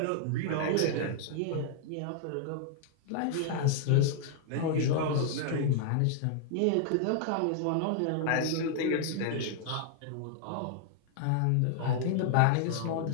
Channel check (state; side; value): different; both; correlation -0.01